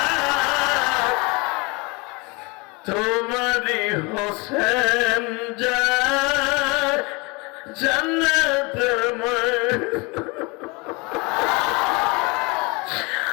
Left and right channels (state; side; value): quieter; right; 27.6 dB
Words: তোমারি হোসেন যা জান্নাত